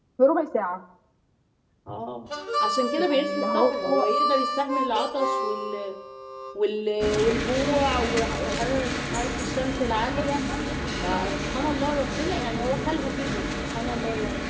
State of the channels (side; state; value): both; identical; correlation 1.00